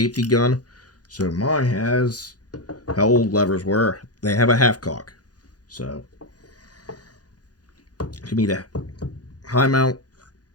gun, so mine has how old levers were. They have a half cock. So, to me, the high mount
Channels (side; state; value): right; late; 0.69 ms